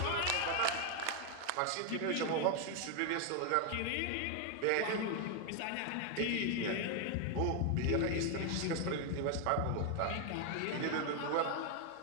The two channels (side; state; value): both; different; correlation 0.01